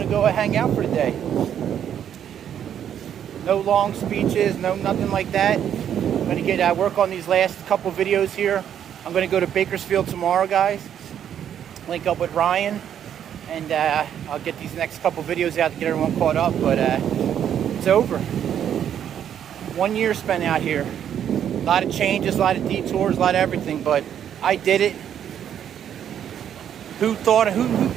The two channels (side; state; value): left; quieter; 9.5 dB